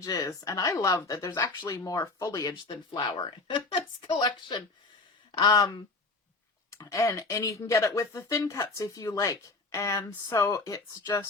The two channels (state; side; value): quieter; right; 3.4 dB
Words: And I love that there's actually more foliage than flower in this collection. And you can get it with the thin cuts if you like. And so it's